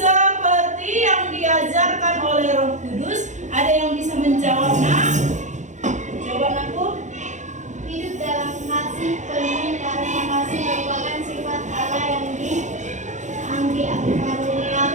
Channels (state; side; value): late; left; 0.35 ms